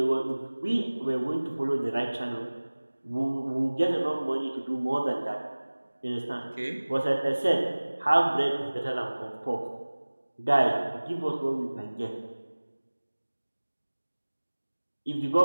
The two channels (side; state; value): both; inverted; correlation -1.00